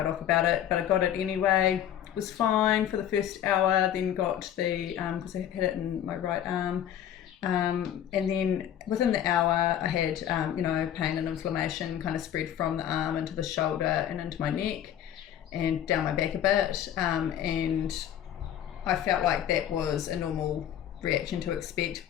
off about it, but I got it anyway. It was fine for the first hour, then got the, because I had it in my right arm, and then within the hour I had, pain and inflammation kind of spread from the arm into the shoulder and into my neck and down my back a bit, and I felt like that was a normal reaction to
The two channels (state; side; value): quieter; right; 10.4 dB